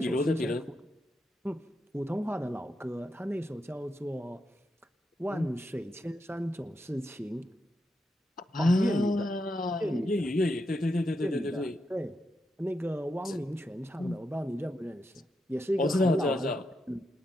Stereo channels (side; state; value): both; normal; correlation 0.84